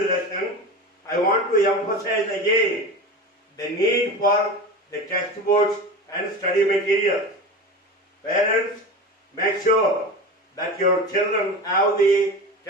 lesson, I want to emphasize again the need for the textbooks and study materials. Parents, make sure that your children have the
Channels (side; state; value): both; normal; correlation 0.29